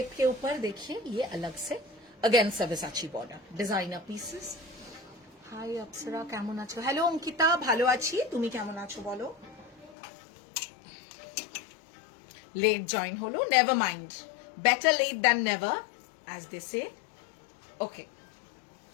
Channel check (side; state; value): right; drops out; at 10.0 s